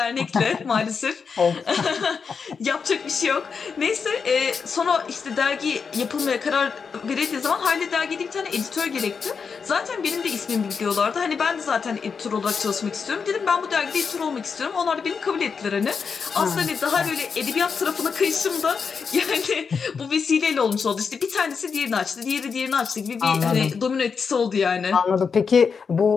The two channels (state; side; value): quieter; right; 5.7 dB